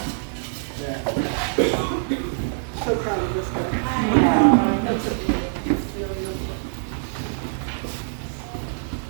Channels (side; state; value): left; silent; 62 dB below the other